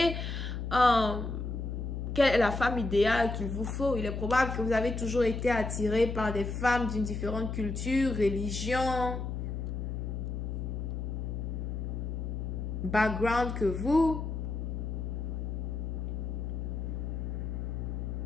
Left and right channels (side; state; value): left; noise; hum, 3 dB below the sound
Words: quelle est la femme idéale qu'il vous faut. Il est probable que vous avez toujours été attiré par des femmes d'une différente culture, religion, background que vous.